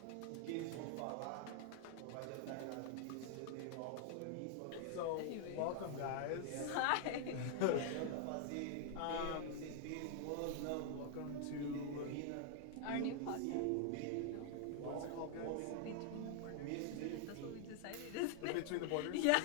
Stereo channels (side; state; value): both; different; correlation 0.00